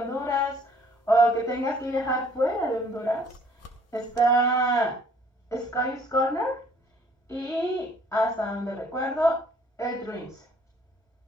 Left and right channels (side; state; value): both; normal; correlation 0.59